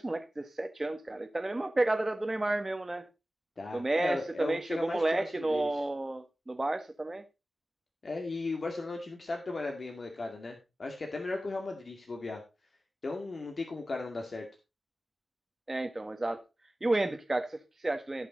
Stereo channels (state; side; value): normal; both; correlation 0.96